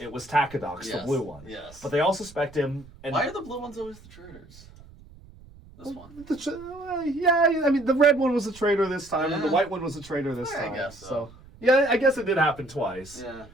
was Takidox, the blue one. Yes. But they all suspect him. And why are the blue ones always the traitors? This one. The red one was a traitor this time, and the white one was a traitor this time. I guess so. Yeah, I guess it did happen twice. Yeah.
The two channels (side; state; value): right; noise; rumble, 21 dB below the sound